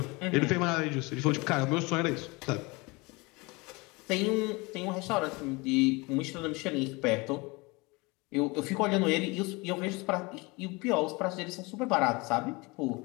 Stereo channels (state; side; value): quieter; right; 25.7 dB